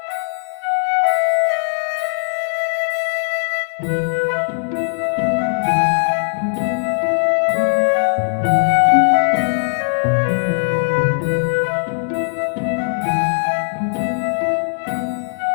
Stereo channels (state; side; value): silent; right; digital silence